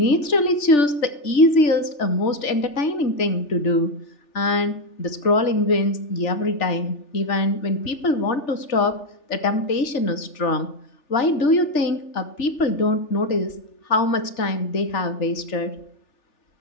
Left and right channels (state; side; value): late; right; 3.4 ms